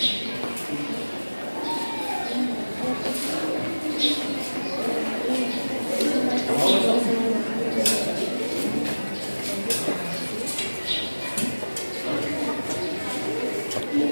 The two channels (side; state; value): both; inverted; correlation -1.00